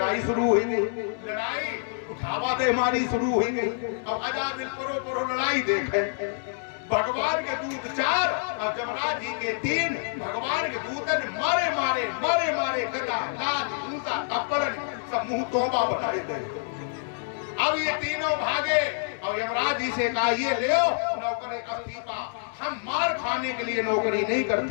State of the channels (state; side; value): silent; right; digital silence